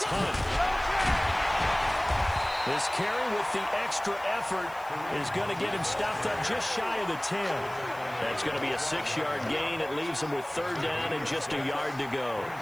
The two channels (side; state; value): right; noise; hiss, 23 dB below the sound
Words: Hunt. This carry with the extra effort is going to get him stopped up just shy of the 10. That's going to be a 6-yard gain. It leaves him with 3rd down and just a yard to go.